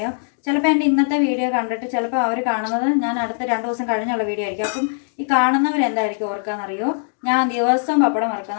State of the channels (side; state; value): right; silent; digital silence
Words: ചിലപ്പോൾ എൻ്റെ ഇന്നത്തെ വീഡിയോ കണ്ടിട്ട് ചിലപ്പോൾ അവർ കാണുന്നത് ഞാൻ അടുത്ത 2 ദിവസം കഴിഞ്ഞുള്ള വീഡിയോ ആയിരിക്കും. അപ്പം ഈ കാണുന്നവരെന്തായിരിക്കും ഓർക്കാന്നറിയോ, ഞാൻ ദിവസവും പപ്പടം